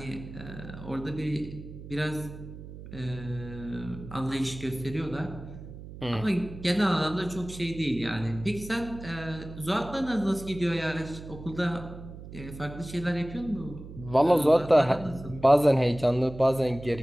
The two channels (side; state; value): right; noise; hum, 13 dB below the sound